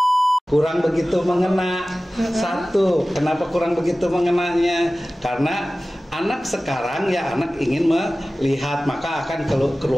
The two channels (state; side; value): normal; both; correlation 0.97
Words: Satu, kenapa kurang begitu mengenanya? Karena anak sekarang ya anak ingin melihat, maka akan